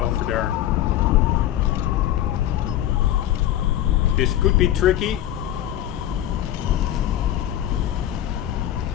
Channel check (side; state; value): right; quieter; 12.4 dB